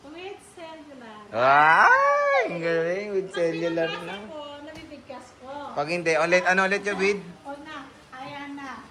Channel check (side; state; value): both; identical; correlation 1.00